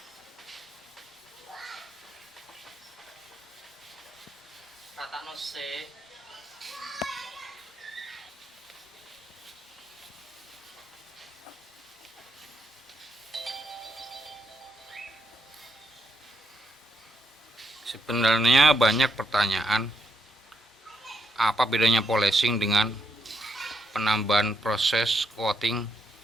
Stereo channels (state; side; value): normal; both; correlation 0.79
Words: Ratakno sik. Sebenarnya banyak pertanyaan, apa bedanya polishing dengan penambahan proses coating